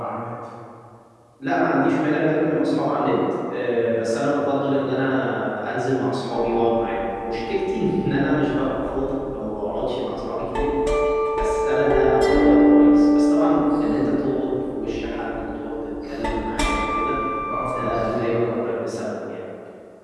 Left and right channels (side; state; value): both; identical; correlation 1.00